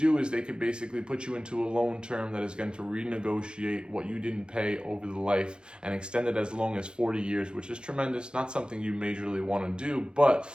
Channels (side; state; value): left; late; 0.050 ms